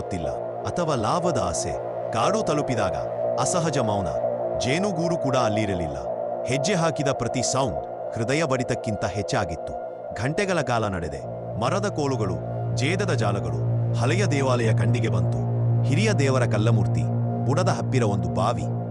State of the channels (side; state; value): both; identical; correlation 1.00